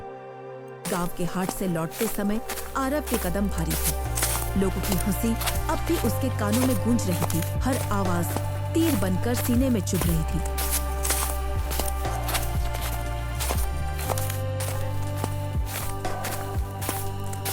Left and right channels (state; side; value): identical; both; correlation 1.00